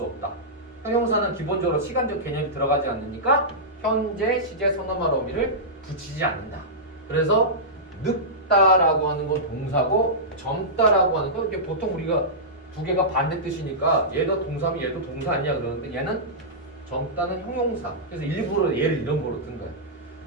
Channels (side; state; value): both; normal; correlation -0.15